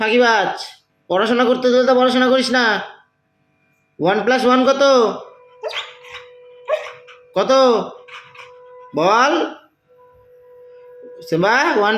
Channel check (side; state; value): both; identical; correlation 1.00